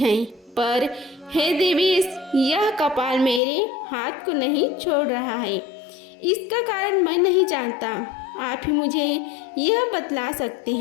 पर हे देवेश, यह कपाल मेरे हाथ को नहीं छोड़ रहा है। इसका कारण मैं नहीं जानता, आप ही मुझे यह बतला सकते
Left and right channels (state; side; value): drops out; right; at 3.4 s